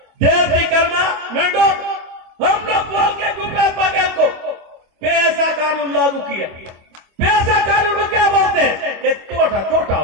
देश की करना मेंढो, हम लोग बोल के भूपेश बघेल को पैसा कानून लागू किया। पैसा छोटा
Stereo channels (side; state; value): left; late; 25 ms